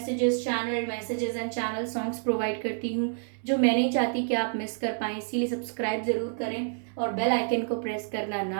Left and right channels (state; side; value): silent; left; digital silence